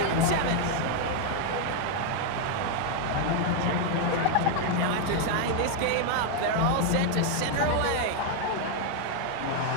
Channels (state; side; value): different; both; correlation 0.00